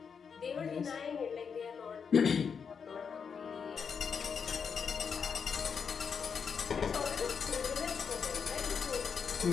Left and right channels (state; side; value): quieter; right; 6.3 dB